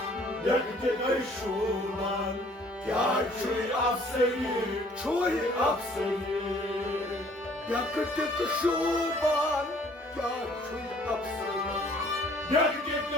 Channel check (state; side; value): normal; both; correlation 0.57